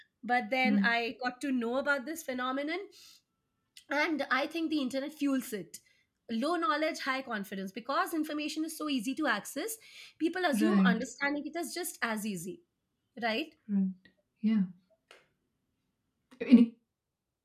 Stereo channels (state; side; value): identical; both; correlation 1.00